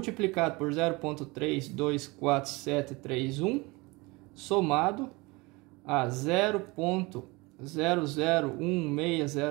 por 0,324731, somado a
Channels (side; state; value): left; quieter; 24.5 dB